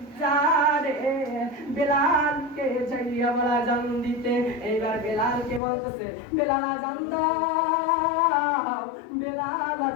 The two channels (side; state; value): right; drops out; at 5.6 s